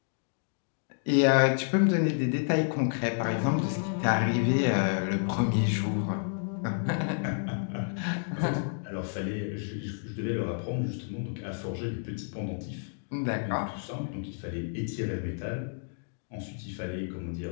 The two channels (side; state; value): right; silent; digital silence